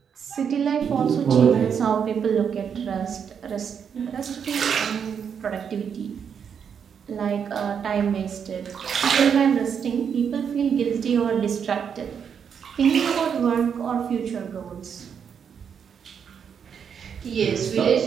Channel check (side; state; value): left; quieter; 7.3 dB